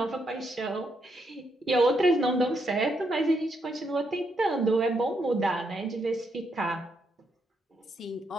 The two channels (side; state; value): both; normal; correlation 0.78